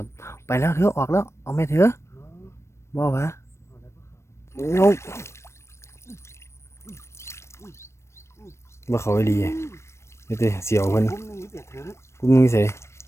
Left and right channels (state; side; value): late; right; 0.13 ms